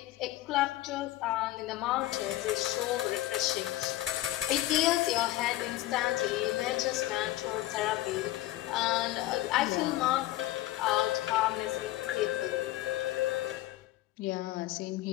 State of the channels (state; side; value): quieter; right; 16.0 dB